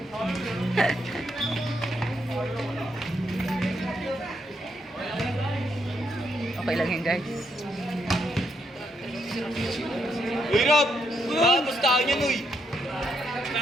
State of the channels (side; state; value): both; normal; correlation 0.78